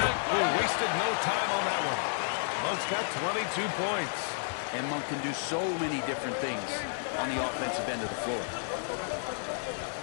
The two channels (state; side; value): silent; right; digital silence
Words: wasted no time on that one. Monk's got 22 points. And Monk can do so many different things on the offensive end of the floor.